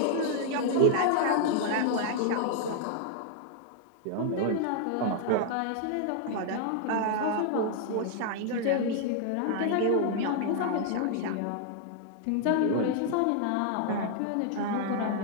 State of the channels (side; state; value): both; different; correlation 0.00